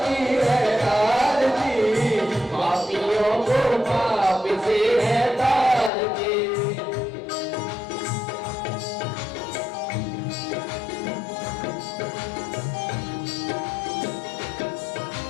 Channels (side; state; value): right; drops out; at 5.9 s